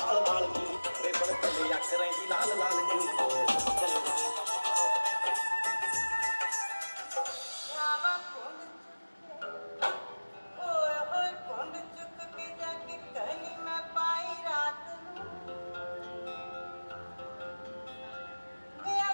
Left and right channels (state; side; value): inverted; both; correlation -1.00